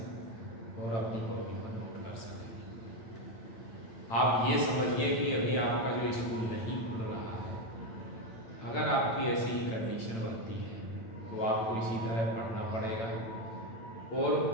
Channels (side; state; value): right; late; 8.9 ms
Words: और अपनी कॉपी पर नोट कर सकें। आप ये समझिए कि अभी आपका जो स्कूल नहीं खुल रहा है, अगर आपकी ऐसी ही कंडीशन बनती है तो आपको इसी तरह पढ़ना पड़ेगा। और